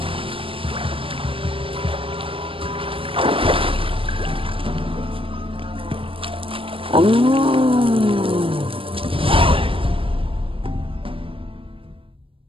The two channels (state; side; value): late; left; 0.26 ms